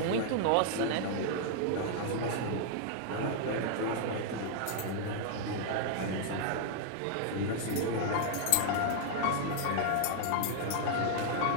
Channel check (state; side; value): different; both; correlation -0.01